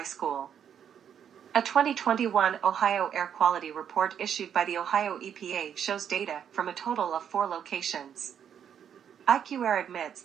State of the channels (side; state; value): left; quieter; 8.6 dB